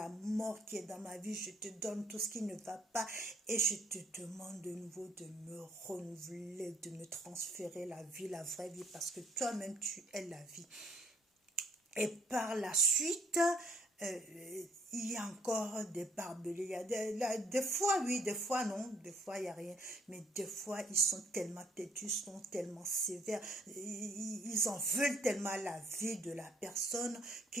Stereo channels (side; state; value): both; normal; correlation 0.64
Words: mort qui est dans ma vie, je te donne tout ce qui ne va pas et je te demande de nouveau de me renouveler, de me transférer la vie, la vraie vie, parce que toi-même, tu es la vie. Et par la suite, il y a encore des barbelés. Il y a des fois, oui, des fois, non. Des fois, il n'y a rien. Mais des fois, ils sont tellement têtus, ils sont tellement sévères. Ils en veulent tellement à la vie de la personne